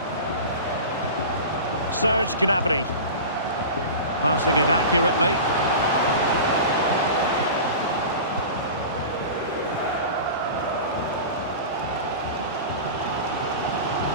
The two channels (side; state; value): both; inverted; correlation -0.32